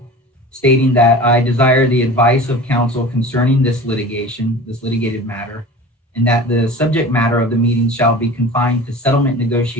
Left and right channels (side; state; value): both; normal; correlation 0.37